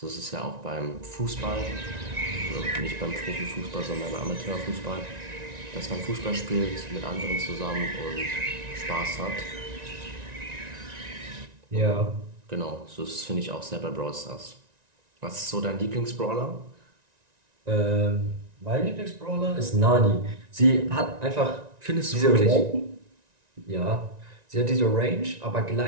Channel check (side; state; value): left; late; 1.9 ms